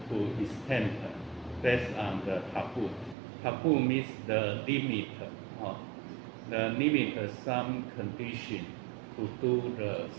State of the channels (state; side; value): drops out; left; at 3.2 s